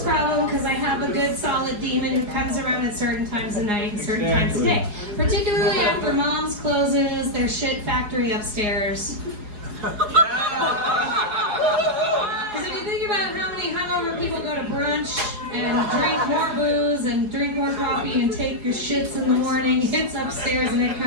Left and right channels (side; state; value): left; late; 4.8 ms